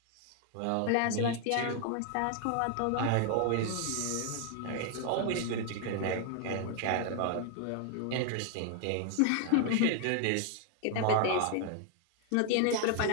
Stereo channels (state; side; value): different; both; correlation 0.00